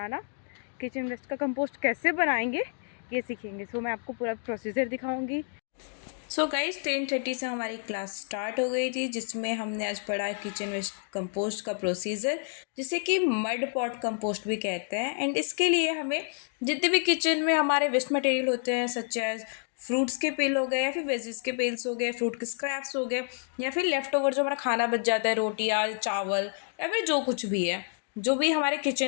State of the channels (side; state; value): right; silent; 58 dB below the other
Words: किचन वेस्ट का कंपोस्ट कैसे बनाएंगे ये सीखेंगे। मैं आपको पूरा प्रोसीजर दिखाऊंगी। गाइज 10:30 से हमारी क्लास स्टार्ट हो गई थी, जिसमें हमने आज पढ़ा किचन वेस्ट कंपोस्ट का प्रोसीजर, जिसे कि मड पॉट कंपोस्ट भी कहते हैं। एंड इसके लिए हमें जितने भी किचन में हमारे वेस्ट मटेरियल होते हैं, सच एज फ्रूट्स के पेल हो गए या फिर वेजिस के पेल्स हो गए, फ्रूट के स्क्रैप्स हो गए, या फिर लेफ्ट ओवर जो हमारा खाना बच जाता है, रोटियाँ, चावल या फिर जो कुछ भी है, जो भी हमारे